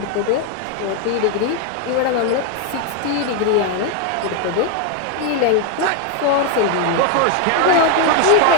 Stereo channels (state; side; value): different; both; correlation 0.01